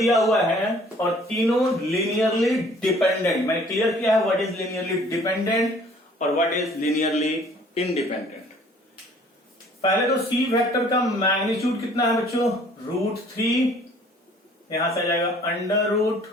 हुआ है और तीनों लीनियरली डिपेंडेंट। मैंने क्लियर किया है व्हाट इज लीनियरली डिपेंडेंट और व्हाट इज लीनियरली इंडिपेंडेंट। पहले तो सी वेक्टर का मैग्नीट्यूड कितना है बच्चों? √3, यहां से आ जाएगा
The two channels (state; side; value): normal; both; correlation 0.55